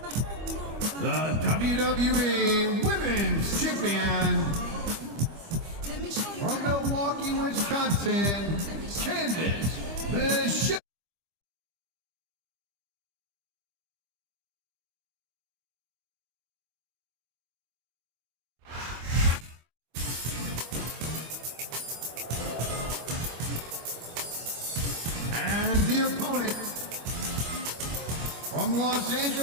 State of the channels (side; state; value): left; late; 25 ms